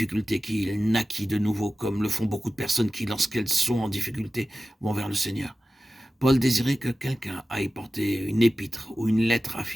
qu'il naquit de nouveau, comme le font beaucoup de personnes qui, lorsqu'elles sont en difficulté, vont vers le Seigneur. Paul désirait que quelqu'un aille porter une épître ou une lettre à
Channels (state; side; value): normal; both; correlation 0.95